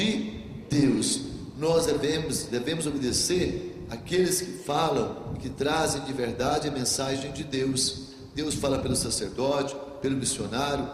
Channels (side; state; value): both; identical; correlation 1.00